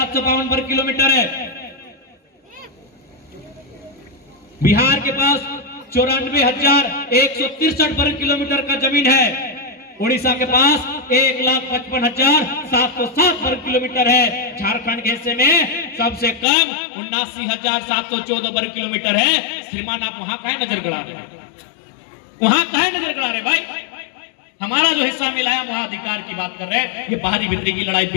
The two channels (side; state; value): right; drops out; at 16.4 s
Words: वर्ग किलोमीटर है, बिहार के पास 94,163 वर्ग किलोमीटर का जमीन है, उड़ीसा के पास 1,55,707 वर्ग किलोमीटर है, झारखंड के हिस्से में सबसे कम 79,714 वर्ग किलोमीटर है। श्रीमान आप वहां काहे नजर गड़ा रहे, वहां काहे नजर गड़ा रहे भाई? हमारा जो हिस्सा मिला है वहां अधिकार की बात कर रहे हैं। ये बाहरी भीतरी की लड़ाई